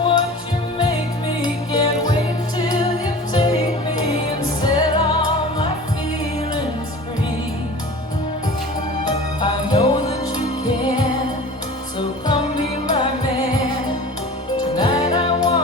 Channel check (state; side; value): normal; both; correlation 0.39